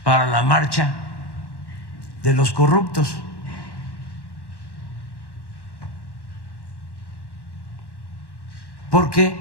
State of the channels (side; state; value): right; late; 1.1 ms